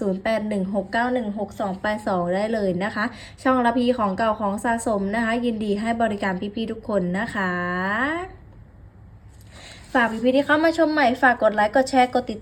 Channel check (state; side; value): identical; both; correlation 1.00